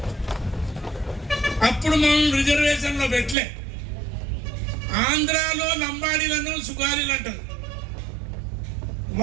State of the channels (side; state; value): left; drops out; at 3.4 s